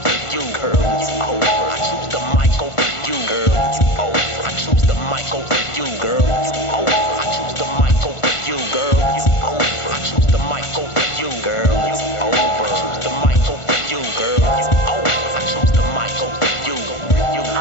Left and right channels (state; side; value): late; right; 1.5 ms